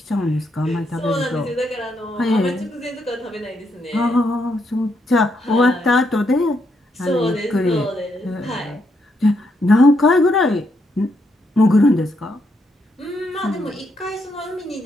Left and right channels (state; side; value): normal; both; correlation 0.78